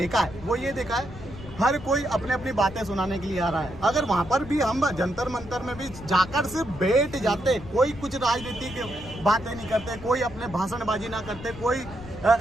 है, वो ये देखा है, हर कोई अपने अपनी बातें सुनाने के लिए आ रहा है। अगर वहाँ पर भी हम जंतर मंतर में भी जाकर सिर्फ बैठ जाते, कोई कुछ राजनीति की बातें नहीं करते, कोई अपने भाषणबाजी ना करते, कोई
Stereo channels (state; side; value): noise; left; rumble, 15 dB below the sound